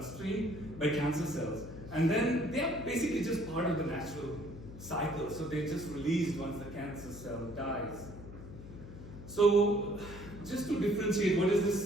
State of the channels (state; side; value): noise; left; hum, 13 dB below the sound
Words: by cancer cells. And then they are basically just part of the natural cycle. So they're just released once the cancer cell dies. So just to differentiate, what is